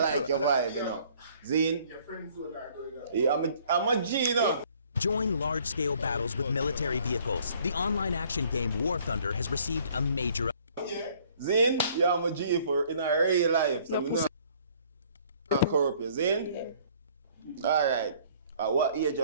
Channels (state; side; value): inverted; both; correlation -0.59